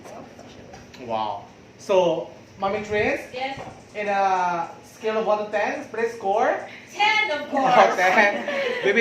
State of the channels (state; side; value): identical; both; correlation 1.00